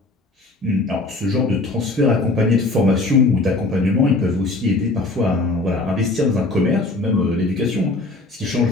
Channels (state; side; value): quieter; right; 3.0 dB